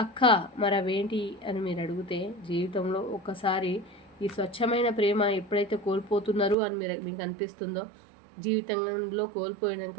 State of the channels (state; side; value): drops out; left; at 6.6 s